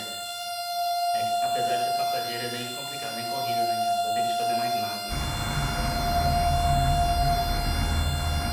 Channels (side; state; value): both; identical; correlation 1.00